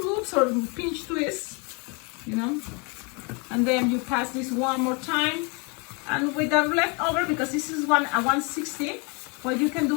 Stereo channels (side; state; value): right; quieter; 32.1 dB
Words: loops or pinch twists, you know, and then you pass this one more time, and with the leftover, because this is a 160, what you can